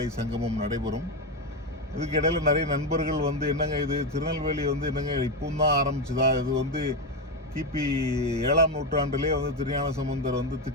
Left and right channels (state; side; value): normal; both; correlation 0.11